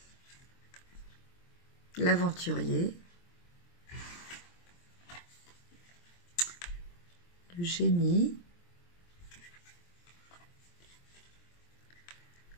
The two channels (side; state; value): right; late; 23 ms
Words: L'aventurier. Le génie.